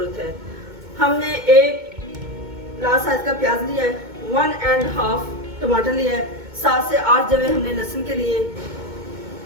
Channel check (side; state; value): left; late; 2.2 ms